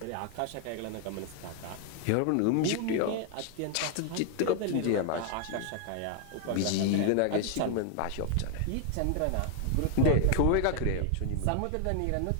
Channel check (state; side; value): different; both; correlation 0.00